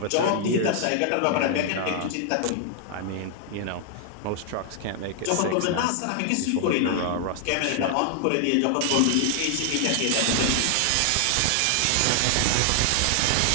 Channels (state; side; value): different; both; correlation 0.00